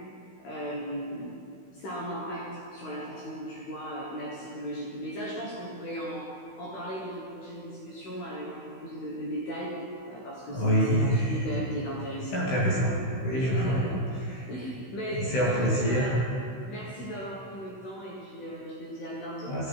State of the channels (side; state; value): right; late; 16 ms